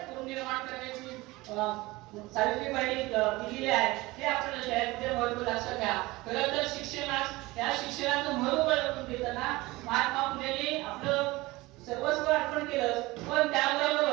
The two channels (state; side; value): quieter; left; 20.8 dB